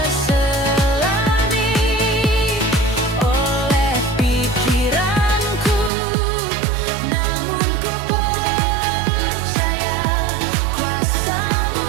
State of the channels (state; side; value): drops out; left; at 5.9 s